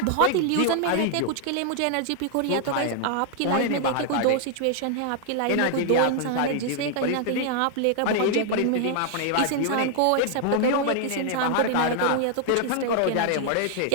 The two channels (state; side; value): different; both; correlation 0.00